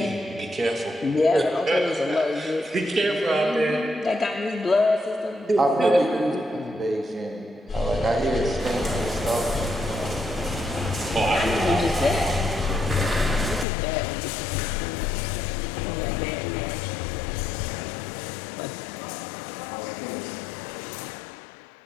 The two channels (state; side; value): drops out; right; at 13.7 s